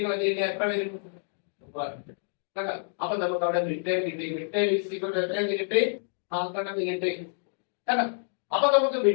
കളഞ്ഞില്ല എത്ര വരും. അപ്പൊ നമുക്ക് അവിടെ മിഡ് ടേം കിട്ടി. Mid term is equal to എത്ര കിട്ടി 100 കിട്ടി. അപ്പൊ നമുക്ക്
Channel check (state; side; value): silent; right; digital silence